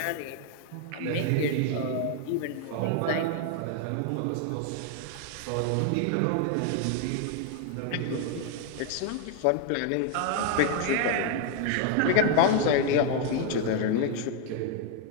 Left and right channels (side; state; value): both; different; correlation 0.00